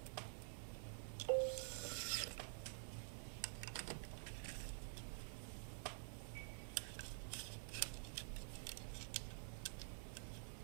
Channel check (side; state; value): left; silent; digital silence